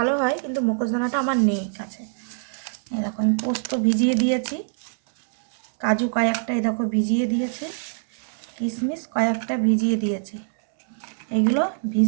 হয়, কিন্তু মগজদানাটা আমার নেই কাছে। এই দেখো, আমি পোস্ত ভিজিয়ে দিয়েছি, কাজু কয়েকটা এই দেখো ভিজিয়ে দিয়েছি, কিশমিশ কয়েকটা ভিজিয়ে দিয়েছি। এগুলো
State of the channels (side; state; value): left; silent; 63 dB below the other